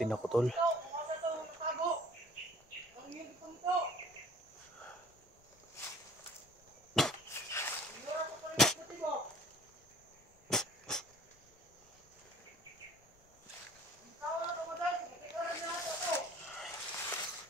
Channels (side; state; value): left; noise; rumble, 29 dB below the sound